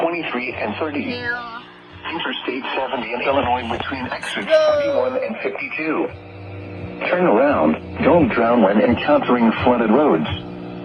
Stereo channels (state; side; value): identical; both; correlation 1.00